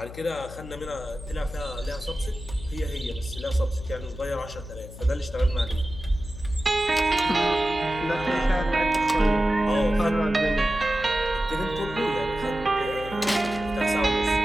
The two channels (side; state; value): left; noise; hum, 13 dB below the sound